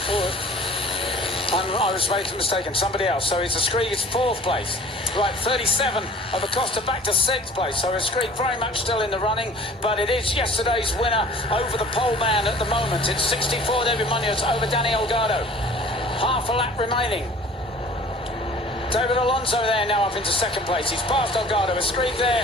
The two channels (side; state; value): both; normal; correlation 0.47